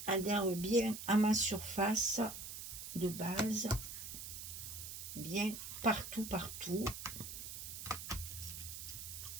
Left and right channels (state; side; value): noise; right; hiss, 8 dB below the sound